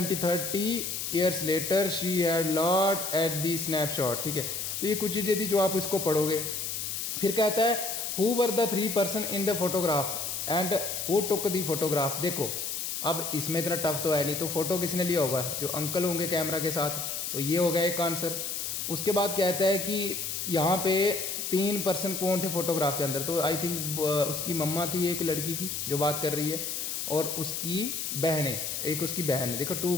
years later she had lot at the snapshot, ठीक है। तो ये कुछ चीज़ें थी जो आप इसको पढ़ोगे। फिर कहता है who were the 3 person in the photograph and who took the photograph। देखो, अब इसमें इतना टफ तो है नहीं, तो फोटो किसने लिया होगा, जो अंकल होंगे कैमरा के साथ। तो ये हो गया एक आंसर। उसके बाद कहता है कि यहाँ पे 3 पर्सन कौन थे फोटोग्राफ के अंदर। तो आई थिंक उसकी मम्मा थी एक लड़की की जो बात कर रही है, और उसकी बहनें, एक उसकी बहन है, देखो 2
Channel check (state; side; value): noise; left; hiss, 3 dB below the sound